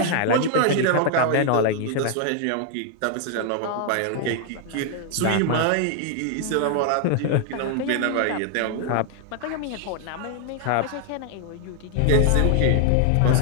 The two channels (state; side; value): different; both; correlation 0.00